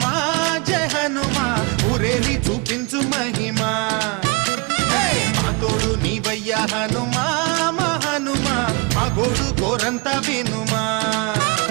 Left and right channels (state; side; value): quieter; left; 29.3 dB